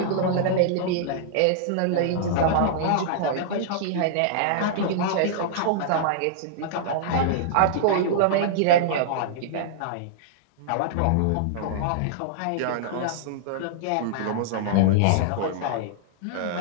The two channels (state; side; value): different; both; correlation -0.01